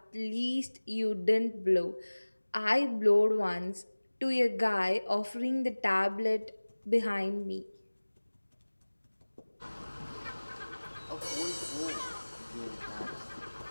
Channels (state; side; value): inverted; both; correlation -1.00